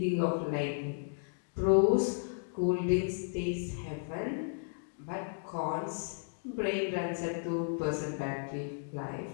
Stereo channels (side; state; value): right; silent; digital silence